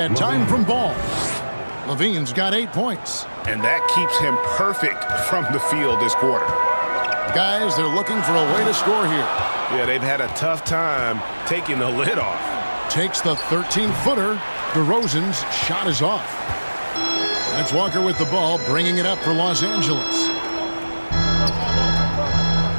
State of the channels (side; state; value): both; inverted; correlation -1.00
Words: time from Ball. Levine's got 8 points. And that keeps him perfect from the field this quarter. Guys, they're looking for a way to score here. Yeah, they've had a tough time taking the lid off. Takes the 13-footer. DeRozan's shot is off. That's Walker with the ball, bringing it up for Los Angeles.